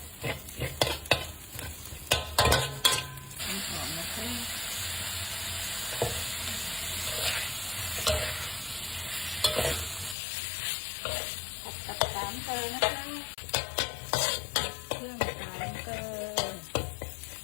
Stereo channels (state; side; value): drops out; right; at 10.2 s